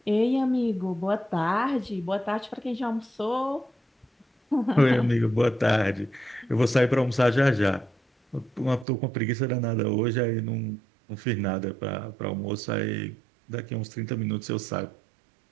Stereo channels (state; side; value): drops out; left; at 8.8 s